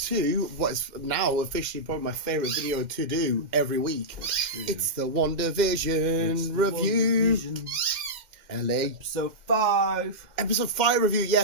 what is now officially probably my favourite video to do every week. It's the WandaVision review. LA. Episode 5. Episode 5 review,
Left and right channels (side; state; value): left; late; 2.1 ms